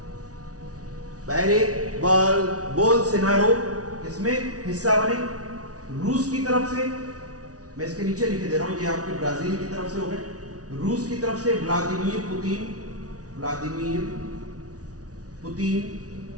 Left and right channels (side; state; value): left; late; 0.68 ms